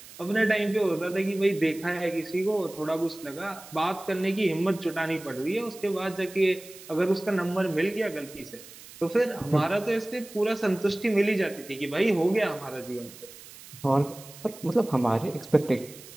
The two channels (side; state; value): right; noise; hiss, 18 dB below the sound